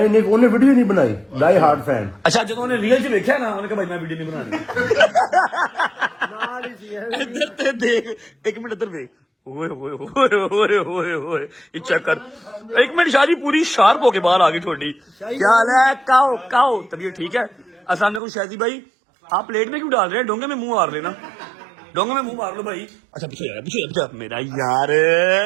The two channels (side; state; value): left; drops out; at 18.2 s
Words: उन्हें वीडियो नहीं बनाई। Die hard fan. अच्छा जो उन्होंने रियल च देखा ना उन्होंने कहा भाई मैं वीडियो नहीं बनानी। इधर ते देख, एक मिनट इधर देख। ओए चेक कर, एक मिनट शादी पूरी शार्प होके बाहर आ गई थोड़ी। क्या हाल है? काओ तबीयत ठीक है? अस्सलाम वालेकुम शादी भाई, आप प्लेट में क्यों डाल रहे हैं? डोंगे में मुंह मार लेना, डोंगे में मुंह मार लो भाई। अच्छा पीछे मेरा यार